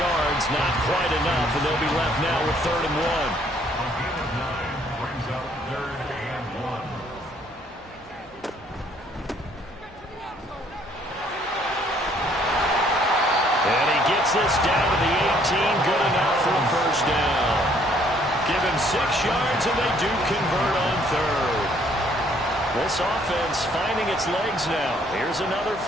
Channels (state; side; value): normal; both; correlation 0.64